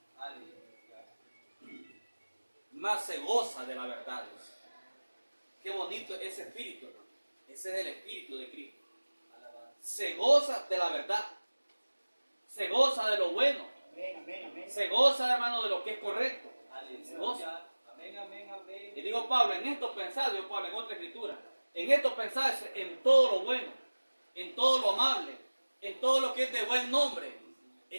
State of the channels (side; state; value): both; inverted; correlation -1.00